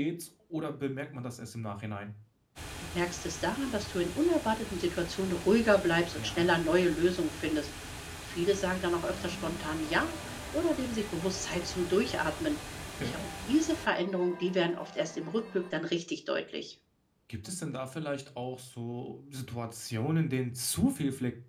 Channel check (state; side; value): identical; both; correlation 1.00